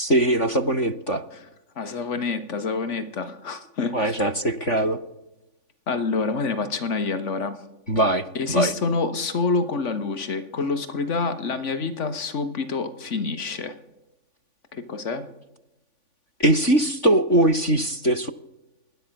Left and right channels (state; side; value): late; right; 3.5 ms